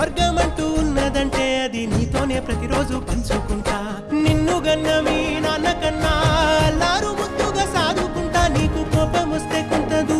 ఉన్నదంటే అది నీతోనే ప్రతిరోజు పంచుకుంటా. నిన్ను గన్న మీ నాన్న కన్నా అల్లారు ముద్దుగా సాదుకుంటా, నీకు కోపం వస్తే కొంత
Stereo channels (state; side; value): identical; both; correlation 1.00